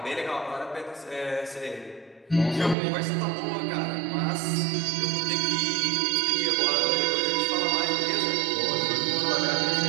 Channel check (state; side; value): drops out; left; at 2.8 s